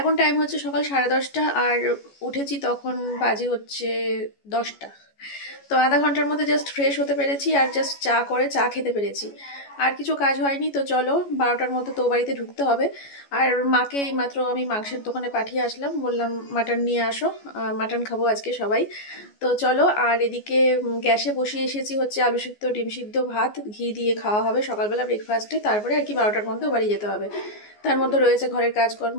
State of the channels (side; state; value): right; late; 14 ms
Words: টাইম হচ্ছে সকাল 10:30 আর উঠেছি তখন বাজে হচ্ছে 10টা। তো আধা ঘন্টার মধ্যে জাস্ট ফ্রেশ হতে পেরেছি আর জাস্ট চা খেতে পেরেছি, আর কিছু কাজ হয়নি। তো চলো 12টার মধ্যে তো বাড়িতে ঢুকতে হবে। আর মাকে এইমাত্র আমি মাংসের দোকানে পাঠিয়ে আসলাম, বললাম মাটন নিয়ে আসো, মাটন খাবো আজকে সবাই। তো চলো, আর এদিকে গ্যাসে বসিয়ে এসেছি হচ্ছে আলু সিদ্ধ, ডিম সিদ্ধ, ভাত ঘি দিয়ে খাওয়া হবে সকালবেলা ব্রেকফাস্টে। তারপরে আর কি 12টার মধ্যে বাড়ি যেতে হবে। তার মধ্যে রয়েছে ঘরের কাজকর্ম,